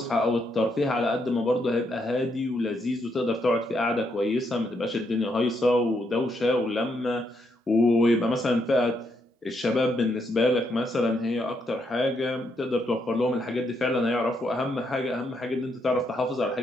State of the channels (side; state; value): both; normal; correlation 0.77